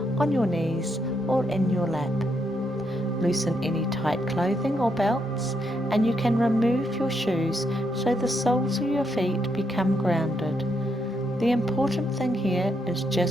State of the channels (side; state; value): both; normal; correlation 0.78